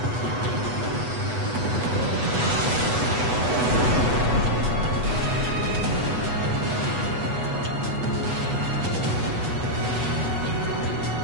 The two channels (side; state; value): left; late; 8.1 ms